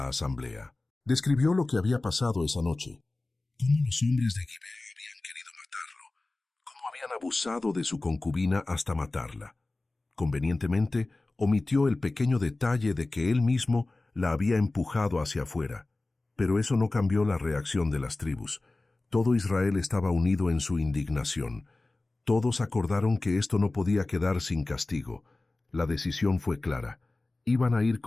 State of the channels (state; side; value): quieter; right; 3.0 dB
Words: asamblea. Describió lo que había pasado esa noche, cómo los hombres de Gibeá habían querido matarlo, cómo habían abusado de su concubina hasta matarla. Convenientemente, omitió el pequeño detalle de que él mismo la había empujado hacia afuera. Pero eso no cambió la reacción de las tribus. Todo Israel estaba unido en su indignación. Todos acordaron que esto no podía quedar sin castigo. La decisión fue clara: iban a ir